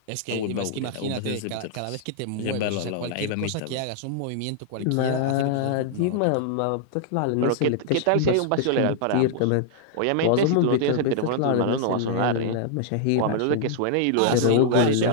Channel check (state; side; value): different; both; correlation -0.01